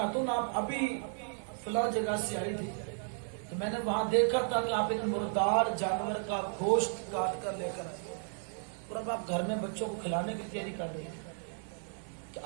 آپ ابھی فلاں جگہ سے آئی تھی تو میں نے وہاں دیکھا تھا کہ آپ ایک مردار جانور کا گوشت کاٹ کر لے کر آئے، اور اب آپ گھر میں بچوں کو کھلانے کی تیاری کر رہی ہیں، کہ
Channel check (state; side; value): silent; left; 55 dB below the other